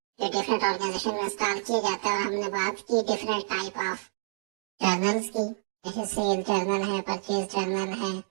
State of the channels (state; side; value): silent; left; digital silence